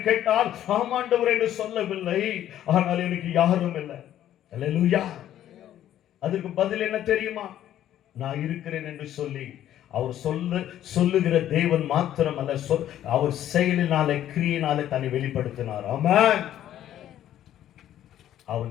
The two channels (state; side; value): quieter; right; 11.7 dB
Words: கேட்டால், ஆமாண்டவர் என்று சொல்லவில்லை, ஆனால் எனக்கு யாரும் இல்லை. அல்லேலூயா. அதற்கு பதில் என்ன தெரியுமா? நான் இருக்கிறேன் என்று சொல்லி அவர் சொல்லுகிற தேவன் மாத்திரம் அல்ல, அவர் செயலினாலே கிரியினாலே தன்னை வெளிப்படுத்தினார். ஆமென். அவன்